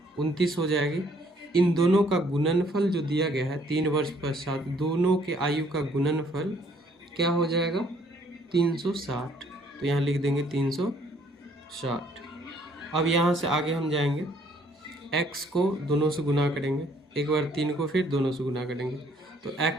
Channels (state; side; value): normal; both; correlation 0.64